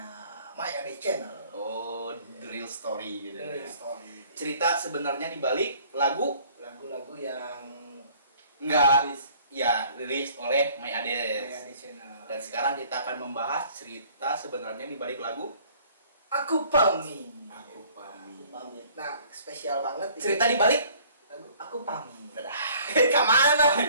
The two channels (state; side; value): inverted; both; correlation -0.55